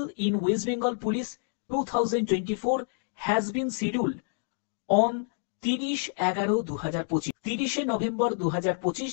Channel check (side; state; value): right; silent; digital silence